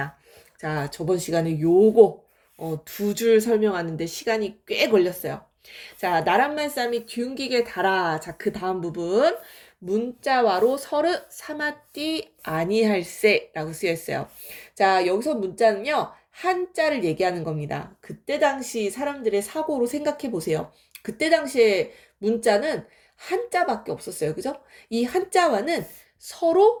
자, 저번 시간에 요거 두 줄 설명하는데 시간이 꽤 걸렸어요. 자, 나란말 쌈이 뒤웅기게 달아. 자, 그 다음 부분. 문자와로 서르 사마띠 아니할세라고 쓰여 있어요. 자, 여기서 문자는요. 한자를 얘기하는 겁니다. 그때 당시 사람들의 사고로 생각해 보세요. 그때 당시에 문자는 한자밖에 없었어요. 그죠? 이 한자와는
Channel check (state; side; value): identical; both; correlation 1.00